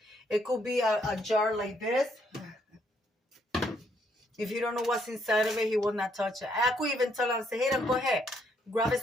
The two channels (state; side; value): normal; both; correlation 0.71